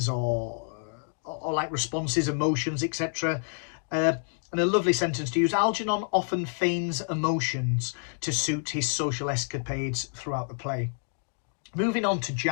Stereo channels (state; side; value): silent; right; 59 dB below the other